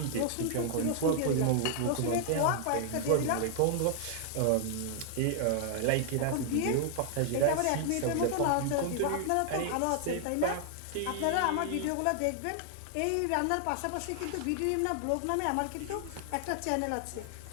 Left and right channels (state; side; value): different; both; correlation 0.00